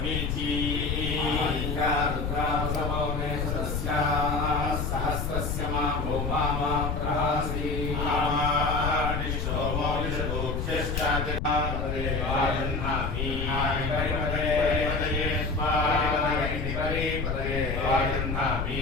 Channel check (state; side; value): noise; left; rumble, 2 dB below the sound